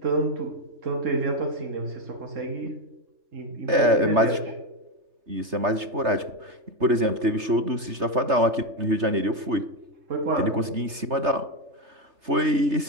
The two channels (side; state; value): left; late; 3.3 ms